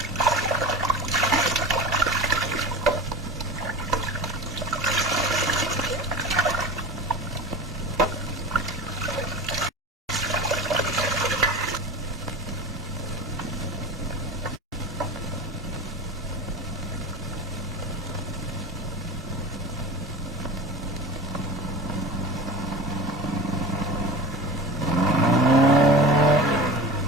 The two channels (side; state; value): both; normal; correlation 0.32